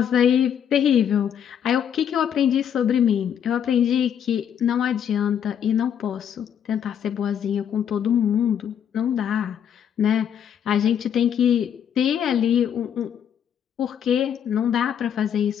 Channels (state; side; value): quieter; right; 8.8 dB